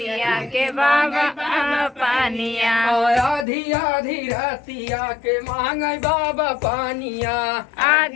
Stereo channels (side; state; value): right; drops out; at 3.5 s